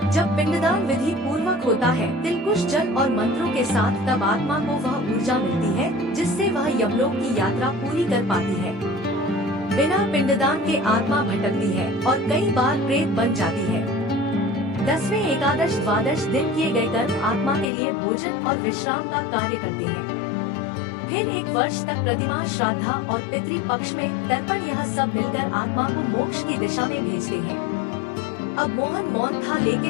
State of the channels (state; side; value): drops out; right; at 17.7 s